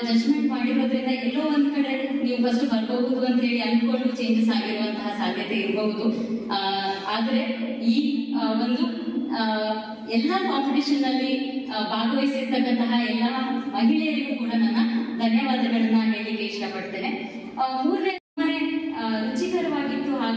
ಜಡ್ಜ್ಮೆಂಟ್ ಮಾಡಿರೋದ್ರಿಂದ ಎಲ್ಲೋ ಒಂದ್ ಕಡೆ ನೀವು ಫಸ್ಟ್ ಬರ್ಬಹುದು ಅಂತ ಹೇಳಿ ಅನ್ಕೊಂಡು ಚೇಂಜಸ್ ಆಗಿರುವಂತಹ ಸಾಧ್ಯತೆ ಇರಬಹುದು. ಆದ್ರೆ ಈ ಒಂದು ಎಲ್ಲಾ ಕಾಂಪಿಟಿಷನ್ ಅಲ್ಲಿ ಭಾಗವಹಿಸಿರ್ತಕ್ಕಂತಹ ಎಲ್ಲಾ ಮಹಿಳೆಯರಿಗೂ ಕೂಡ ನನ್ನ ಧನ್ಯವಾದಗಳನ್ನ ಹೇಳಲಿಕ್ಕೆ ಇಷ್ಟಪಡ್ತೇನೆ. 3ನೇ ರುಚಿಕರವಾಗಿತ್ತು,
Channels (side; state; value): both; identical; correlation 1.00